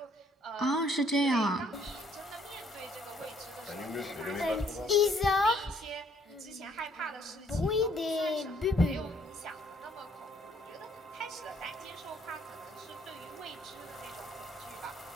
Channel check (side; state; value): both; normal; correlation 0.65